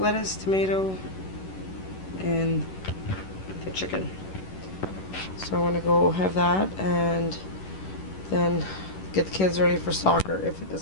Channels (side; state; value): right; late; 11 ms